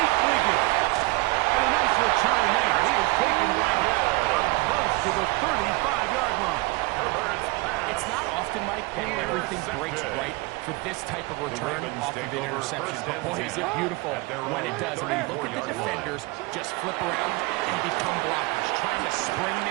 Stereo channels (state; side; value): quieter; left; 24.0 dB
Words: Wiggins. And a nice return there. He is taken down close to the 35-yard line. It's not often often, Mike, that everything breaks right for this type of return off of an interception. But boy, is it beautiful when it does. I mean, look at the defenders just flip around and become blockers, trying to spring